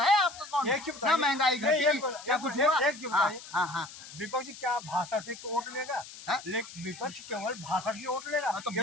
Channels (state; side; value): noise; left; hiss, 15 dB below the sound